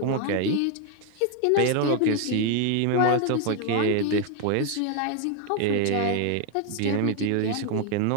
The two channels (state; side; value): different; both; correlation 0.01